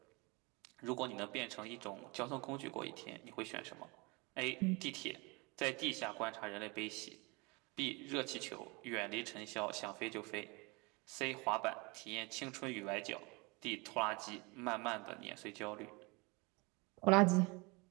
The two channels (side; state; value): left; quieter; 27.5 dB